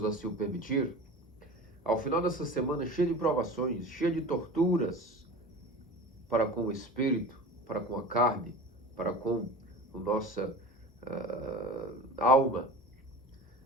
assim o permitir. Ao final dessa semana, cheia de provações, cheia de torturas, para com o espírito, para com a carne, para com a nossa alma,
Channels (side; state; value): both; normal; correlation 0.34